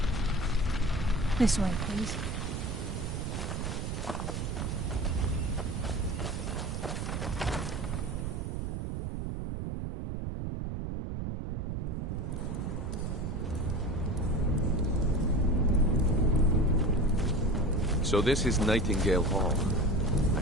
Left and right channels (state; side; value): noise; right; rumble, 3 dB below the sound